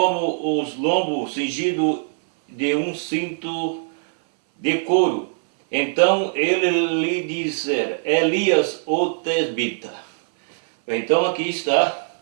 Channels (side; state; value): left; silent; 59 dB below the other